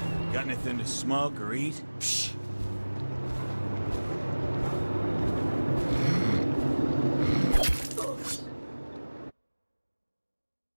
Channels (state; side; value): inverted; both; correlation -1.00